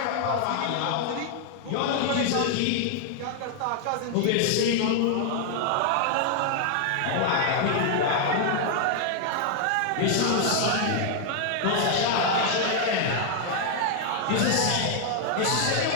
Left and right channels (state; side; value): different; both; correlation 0.00